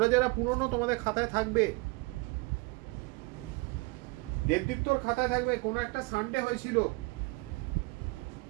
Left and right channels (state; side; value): quieter; left; 26.0 dB